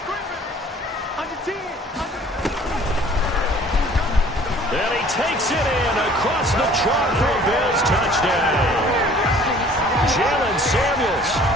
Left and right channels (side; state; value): both; normal; correlation 0.52